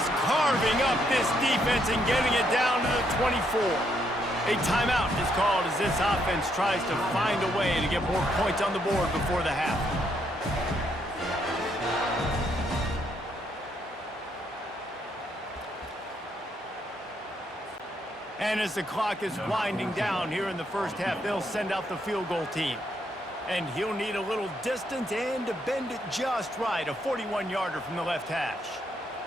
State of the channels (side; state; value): both; normal; correlation 0.74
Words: carving up this defense and getting it down to the 24. A timeout is called as this offense tries to find a way to get more points on the board before the half. And as the clock is winding down here in the first half, they'll send out the field goal team. And he'll need a little distance and to bend it just right. A 41-yarder from the left hash.